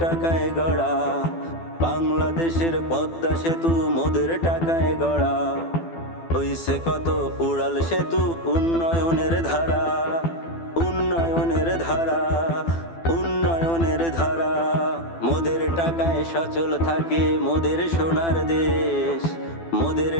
টাকায় গড়া, বাংলাদেশের পদ্মা সেতু মোদের টাকায় গড়া। হইছে কত উড়াল সেতু, উন্নয়নের ধারা, উন্নয়নের ধারা, উন্নয়নের ধারা। মোদের টাকায় সচল থাকে মোদের সোনার দেশ, মোদের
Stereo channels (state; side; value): late; right; 12 ms